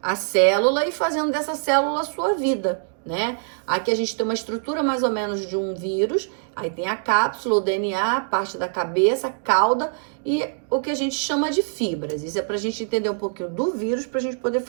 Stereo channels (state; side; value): silent; left; digital silence